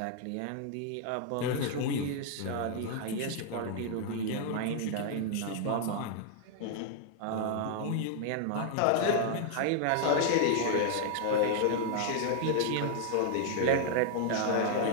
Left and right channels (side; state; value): both; different; correlation 0.00